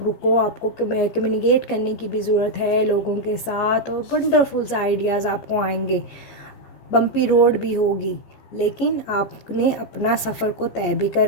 रुको, आपको कम्युनिकेट करने की भी ज़रूरत है लोगों के साथ, और वंडरफुल से आइडियाज़ आपको आएंगे। बम्पी रोड भी होगी, लेकिन आपने अपना सफ़र को तय भी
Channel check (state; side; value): late; right; 14 ms